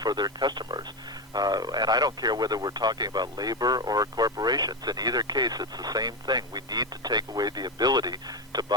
for their customers. And I don't care whether we're talking about labor or corporations. In either case, it's the same thing. We need to take away the ability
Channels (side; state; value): both; normal; correlation 0.13